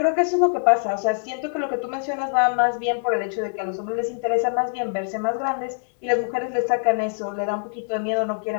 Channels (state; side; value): silent; right; 63 dB below the other